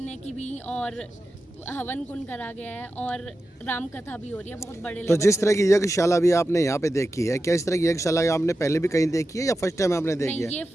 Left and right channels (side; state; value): both; normal; correlation 0.92